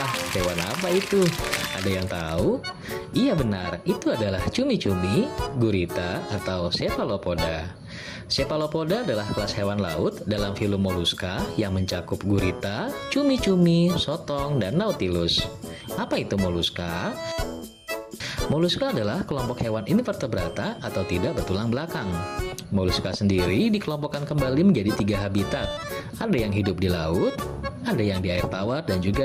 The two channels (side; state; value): both; identical; correlation 1.00